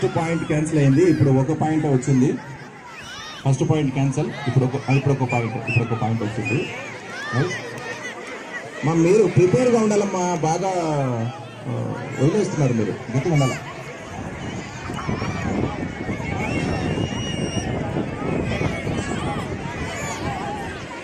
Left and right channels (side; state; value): both; identical; correlation 1.00